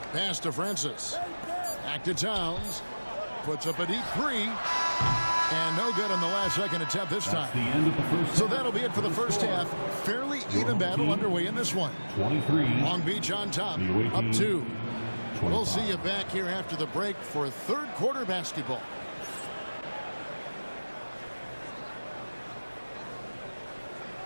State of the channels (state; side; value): inverted; both; correlation -1.00